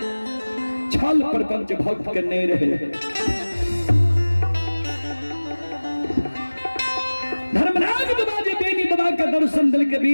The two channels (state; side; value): inverted; both; correlation -1.00